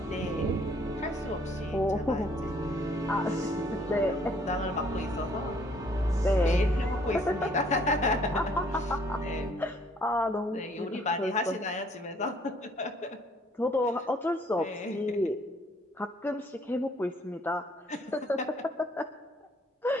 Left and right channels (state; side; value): normal; both; correlation 0.62